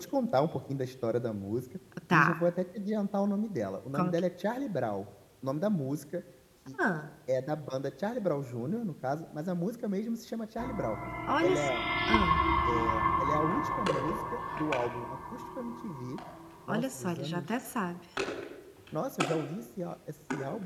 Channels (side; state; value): both; identical; correlation 1.00